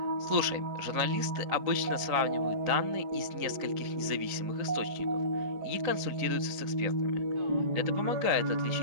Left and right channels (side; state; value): left; late; 3.9 ms